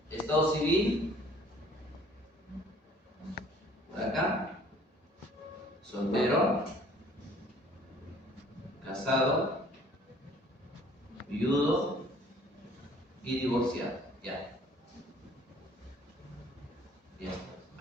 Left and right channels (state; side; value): normal; both; correlation 0.55